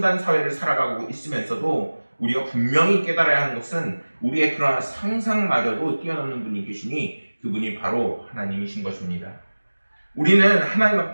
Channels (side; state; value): both; inverted; correlation -1.00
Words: 사회를 살아가고 있으면서도 우리가 분명히 깨달아야 하는 것은 우리의 그러한 상상마저도 뛰어넘는 분이 계시니 그분이 바로 하나님이신 것입니다. 우리는 하나님